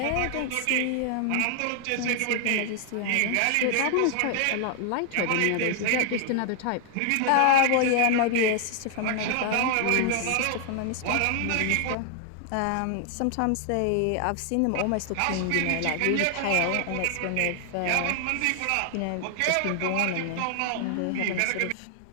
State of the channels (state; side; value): different; both; correlation 0.00